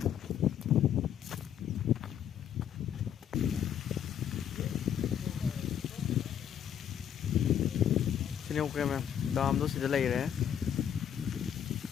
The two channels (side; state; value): right; quieter; 9.3 dB